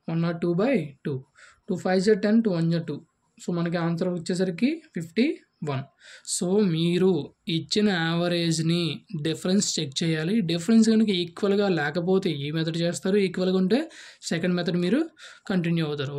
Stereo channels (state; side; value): identical; both; correlation 1.00